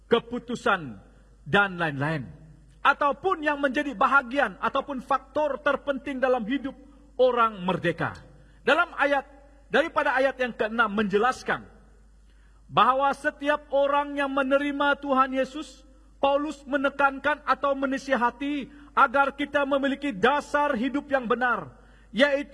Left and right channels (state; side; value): identical; both; correlation 1.00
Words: keputusan, dan lain-lain. Ataupun yang menjadi bahagian ataupun faktor terpenting dalam hidup orang merdeka. Dalam daripada ayat yang ke-6 menjelaskan bahwa setiap orang yang menerima Tuhan Yesus, Paulus menekankan atau menasihati agar kita memiliki dasar hidup yang benar,